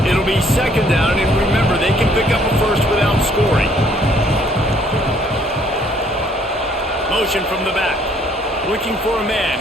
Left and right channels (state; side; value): normal; both; correlation 0.63